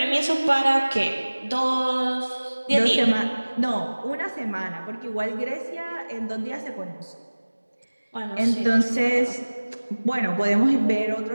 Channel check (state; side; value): inverted; both; correlation -1.00